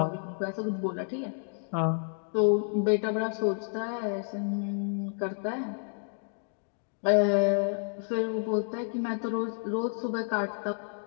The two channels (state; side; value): silent; right; 58 dB below the other